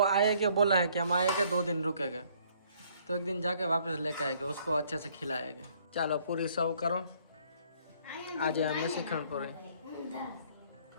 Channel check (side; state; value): both; inverted; correlation -0.62